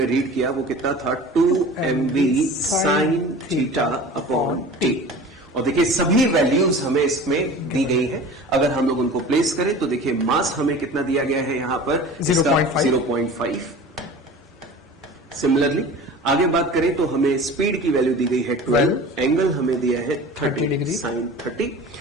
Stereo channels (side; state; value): both; normal; correlation 0.39